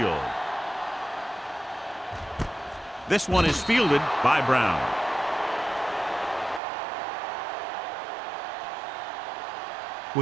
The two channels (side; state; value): left; drops out; at 6.6 s